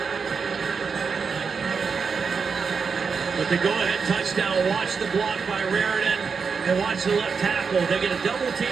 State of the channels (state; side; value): quieter; left; 5.5 dB